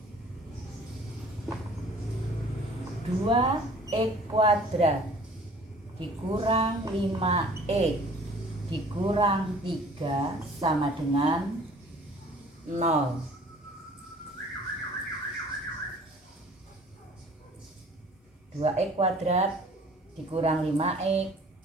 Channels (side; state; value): both; normal; correlation 0.50